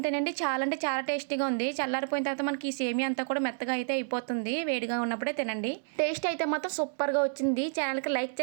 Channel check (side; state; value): left; silent; 58 dB below the other